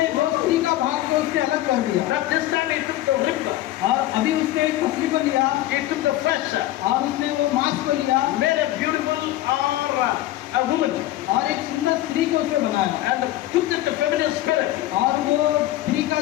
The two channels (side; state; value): right; quieter; 15.1 dB